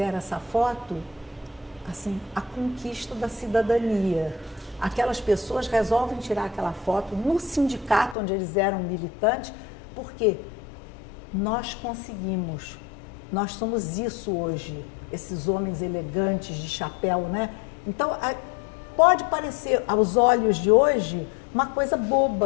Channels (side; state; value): right; drops out; at 8.2 s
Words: essa foto, assim, a conquista da cidadania. Aquelas pessoas resolvem tirar aquela foto no sindicato onde eles eram militantes, porque nós conseguimos, nós somos isso hoje, esses homens elegantes de chapéu, né? Então, pode parecer aos olhos de hoje uma coisa